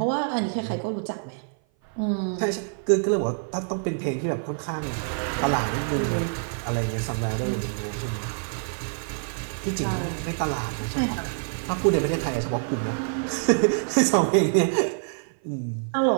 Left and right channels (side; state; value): left; silent; 56 dB below the other